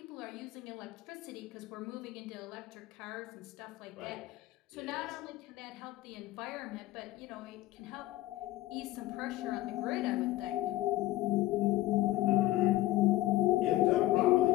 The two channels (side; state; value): right; quieter; 16.5 dB